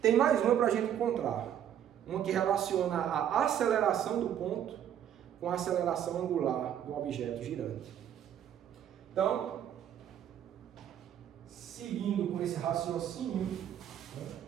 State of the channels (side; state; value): left; quieter; 10.0 dB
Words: Tem mais uma para a gente encontrar, uma que relaciona a aceleração do ponto com a aceleração angular do objeto girante. Então, seguindo com esse raciocínio,